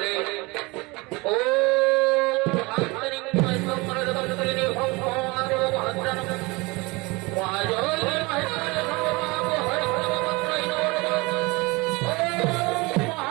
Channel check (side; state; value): left; quieter; 24.8 dB